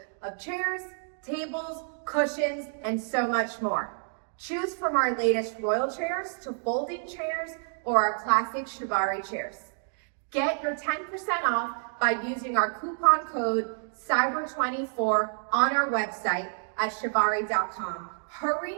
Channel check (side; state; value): left; silent; digital silence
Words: of chairs, tables, cushions, and so much more. Choose from our latest royal chairs to folding chairs or our classic Chivari chairs. Get your 10% off by using our coupon code CYBER24 on our website at chivari.com. Hurry